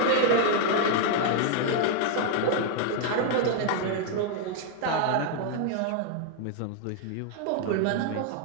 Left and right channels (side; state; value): both; different; correlation 0.00